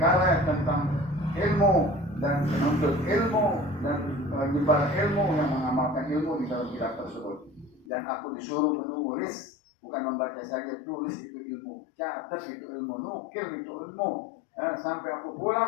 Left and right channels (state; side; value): drops out; right; at 7.9 s